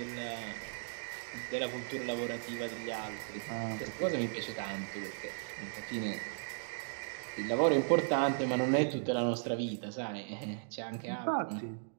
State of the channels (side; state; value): left; silent; digital silence